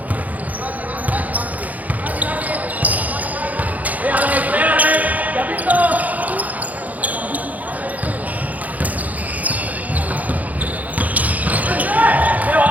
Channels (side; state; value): left; late; 0.077 ms